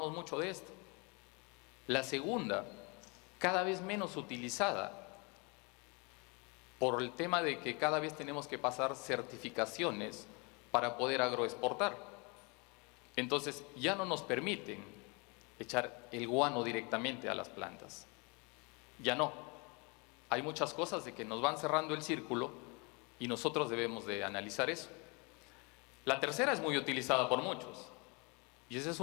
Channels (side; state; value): right; quieter; 30.4 dB